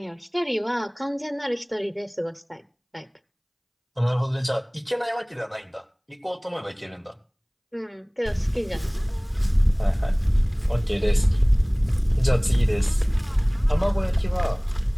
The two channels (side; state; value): both; identical; correlation 1.00